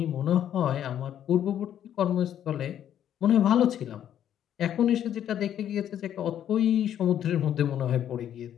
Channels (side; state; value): right; quieter; 10.3 dB